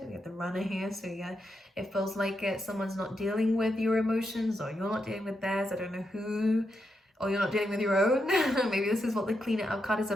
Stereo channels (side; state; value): both; normal; correlation 0.84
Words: We have the Runner here. So yeah, it feels like someone's not dealing with your emotions, or you're not dealing with theirs. I don't know who. Or you're not dealing with your own. Maybe this is what the Clean It Up card is